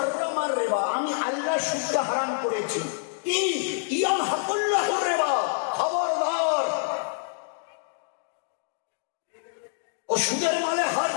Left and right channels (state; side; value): silent; right; digital silence